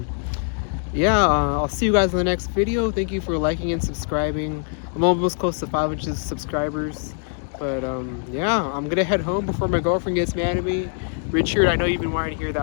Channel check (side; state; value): right; silent; 55 dB below the other